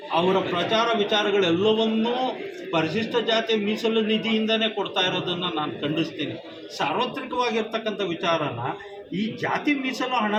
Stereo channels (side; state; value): both; identical; correlation 1.00